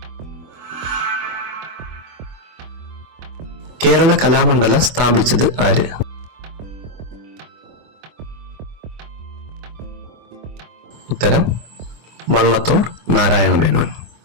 കേരള കലാമണ്ഡലം സ്ഥാപിച്ചത് ആര്? ഉത്തരം വള്ളത്തോൾ നാരായണ മേനോൻ.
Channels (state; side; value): late; left; 24 ms